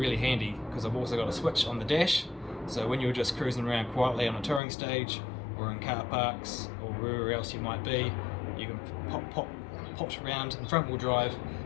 handy because I've also got a switch on the dash, so when you're just cruising around quietly on a touring stage or in car parks or wherever else you might be, you can pop around in front wheel drive,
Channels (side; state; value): right; drops out; at 4.6 s